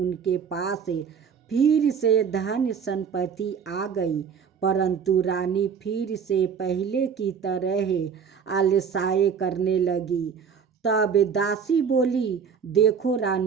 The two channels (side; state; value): left; quieter; 6.8 dB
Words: पास फिर से धन संपत्ति आ गई, परंतु रानी फिर से पहले की तरह आलसाए करने लगी। तब दासी बोली, देखो